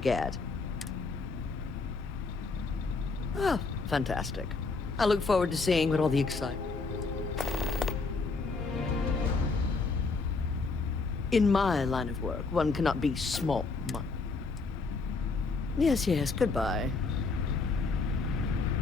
get. Oh, fantastic. I look forward to seeing what all the excitement... In my line of work, one cannot be small. Yes, yes, goodbye.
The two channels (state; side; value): quieter; right; 4.1 dB